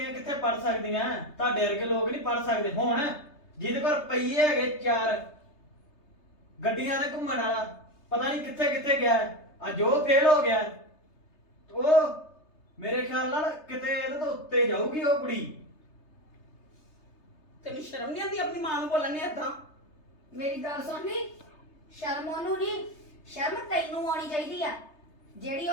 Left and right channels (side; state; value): right; late; 3.3 ms